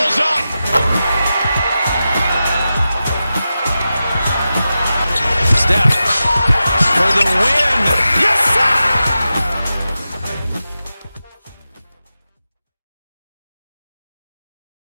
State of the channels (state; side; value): inverted; both; correlation -0.92